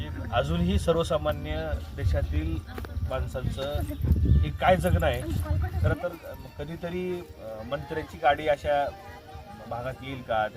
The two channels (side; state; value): both; identical; correlation 1.00